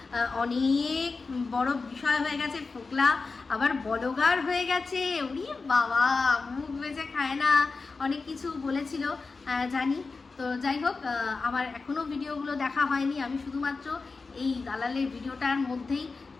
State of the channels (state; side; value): quieter; right; 4.2 dB